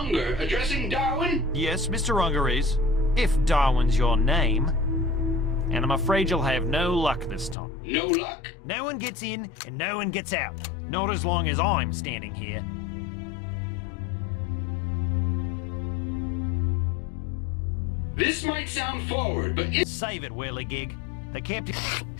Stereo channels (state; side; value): drops out; right; at 7.6 s